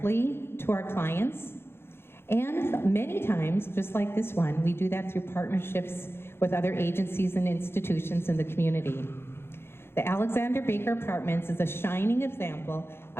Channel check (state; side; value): late; right; 0.11 ms